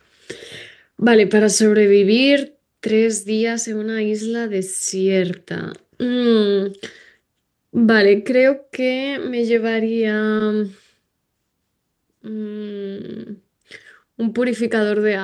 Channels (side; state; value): both; identical; correlation 1.00